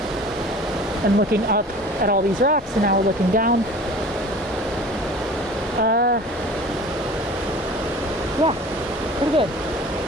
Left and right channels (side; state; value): both; normal; correlation 0.42